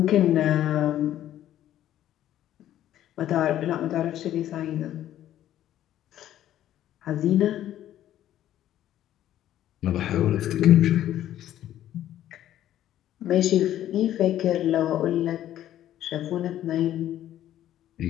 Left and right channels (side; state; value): right; quieter; 12.3 dB